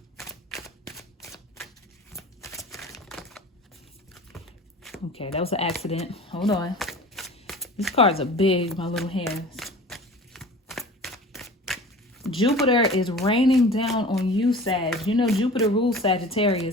Okay, that was an accident. Hold on. These cards are big, my little hands. Jupiter is raining down on you, Sag. You know, Jupiter rules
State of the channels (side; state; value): both; normal; correlation 0.40